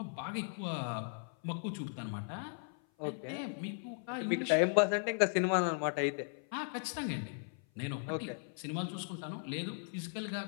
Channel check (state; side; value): silent; right; 53 dB below the other